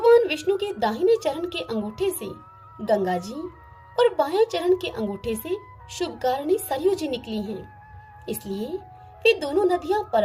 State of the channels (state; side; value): identical; both; correlation 1.00